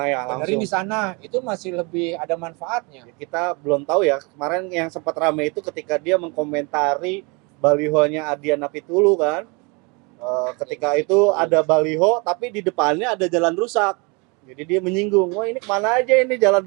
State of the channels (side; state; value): left; quieter; 30.1 dB